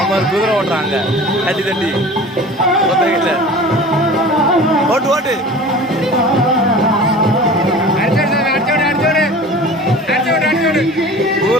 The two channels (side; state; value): both; normal; correlation 0.40